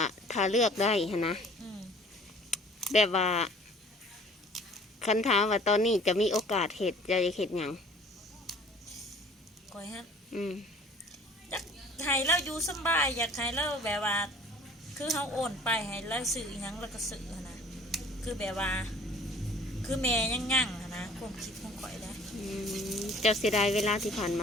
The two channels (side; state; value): both; normal; correlation 0.51